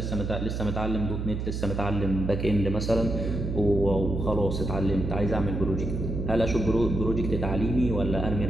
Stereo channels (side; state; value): right; noise; hum, 3 dB below the sound